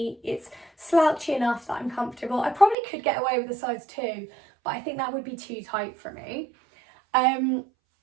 It's slouchy enough that I'm comfortable. I probably could get away with a size 2, but I think that would be too tight for me.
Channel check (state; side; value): drops out; left; at 2.8 s